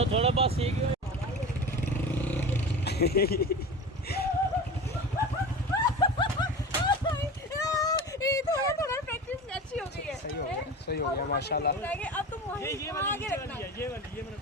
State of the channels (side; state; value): both; normal; correlation 0.31